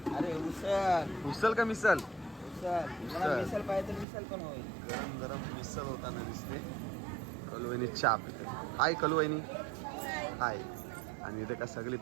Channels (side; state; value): left; drops out; at 4.0 s